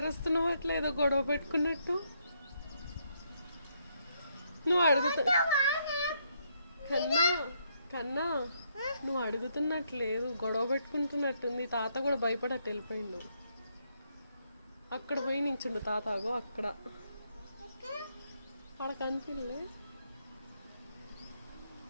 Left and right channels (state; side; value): inverted; both; correlation -0.74